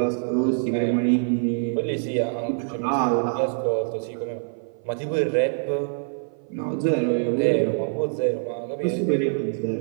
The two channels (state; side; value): silent; left; 56 dB below the other